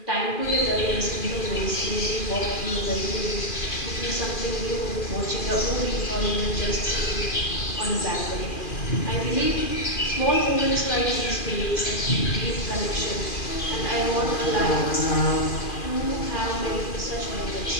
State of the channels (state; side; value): late; right; 2.4 ms